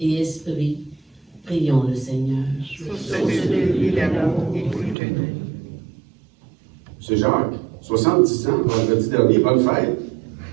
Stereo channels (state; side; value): drops out; left; at 5.0 s